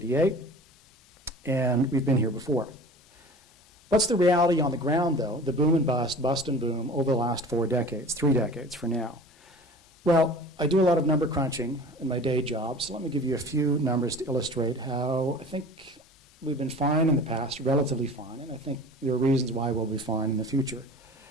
and we've been here before. What's the reality on the ground, though, the boom and bust, bust and boom, over the last 4 decades, 3 decades for now? Well, I do a lot of number crunching in my day job, so let me give you a few numbers to illustrate how I think we've been fine in the past, relatively fine, and I think there are reasons why we'll be fine in the future.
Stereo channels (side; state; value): both; normal; correlation 0.41